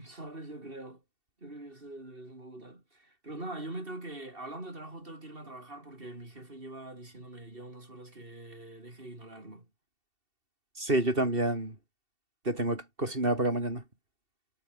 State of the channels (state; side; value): late; left; 2.7 ms